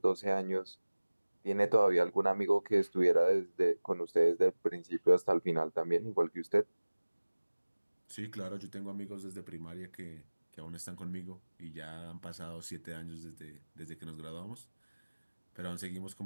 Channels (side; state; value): both; inverted; correlation -1.00